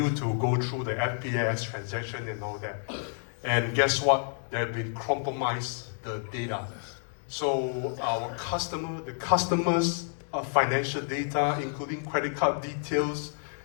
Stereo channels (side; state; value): right; silent; 57 dB below the other